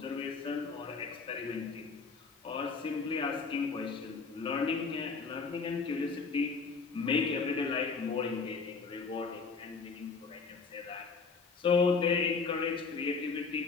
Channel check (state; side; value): quieter; right; 4.8 dB